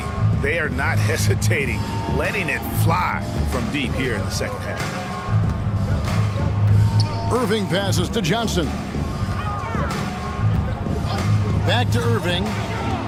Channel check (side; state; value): both; identical; correlation 1.00